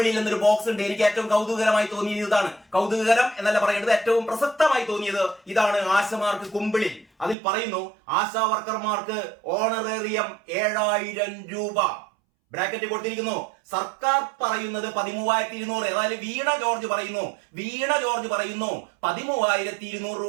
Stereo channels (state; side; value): drops out; left; at 7.4 s